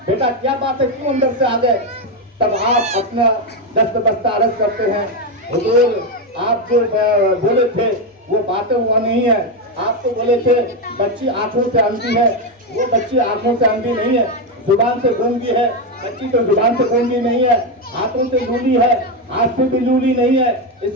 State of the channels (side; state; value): both; normal; correlation 0.08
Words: बेटा क्या बात है, क्यों अंदर से आ गए? तब आप अपना दस्त बस्ता अर्ज करते हैं, हुजूर आप जो बोले थे वो बातें हुआ नहीं है। आप तो बोले थे बच्ची आंखों से अंधी है, वो बच्ची आंखों से अंधी नहीं है, जुबान से गूंगी है। बच्ची तो जुबान से गूंगी नहीं है, हाथों से लूली है, हाथ से भी लूली नहीं है।